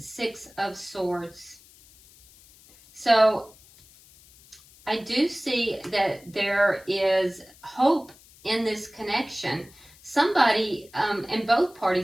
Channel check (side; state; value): left; noise; hiss, 25 dB below the sound